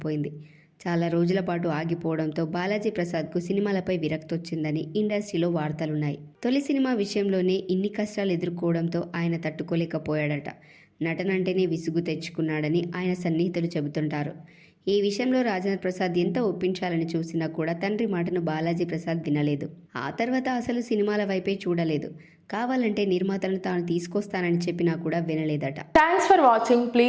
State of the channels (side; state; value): both; identical; correlation 1.00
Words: చాలా రోజుల పాటు ఆగిపోవడంతో బాలాజీ ప్రసాద్కు సినిమాలపై విరక్తి వచ్చిందని ఇండస్ట్రీలో వార్తలున్నాయి. తొలి సినిమా విషయంలోనే ఇన్ని కష్టాలు ఎదుర్కోవడంతో ఆయన తట్టుకోలేకపోయాడట. నటనంటేనే విసుగు తెచ్చుకున్నాడని ఆయన సన్నిహితులు చెబుతుంటారు. ఈ విషయంలో రాజేంద్ర ప్రసాద్ ఎంత ఒప్పించాలని చూసినా కూడా తండ్రి మాటను బాలాజీ ప్రసాద్ వినలేదు. ఆ తర్వాత అసలు సినిమాల వైపే చూడలేదు. కావాలంటే నిర్మాతలను తాను తీసుకొస్తానని చెప్పినా కూడా వినలేదట. Thanks for watching.